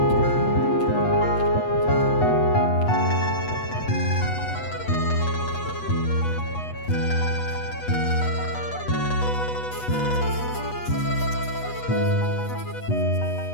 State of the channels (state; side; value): late; right; 8.2 ms